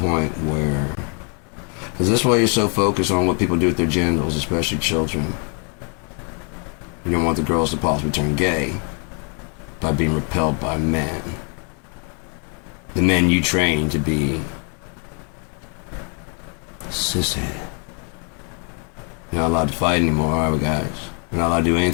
where... Is this why you're so focused on what people do with their genitals, especially children? You don't want the girls to possibly turn gay by being repelled by men. The men you train to be sissy. You're not allowed to fight anymore, are we, guys? We're not allowed to do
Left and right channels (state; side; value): quieter; right; 38.9 dB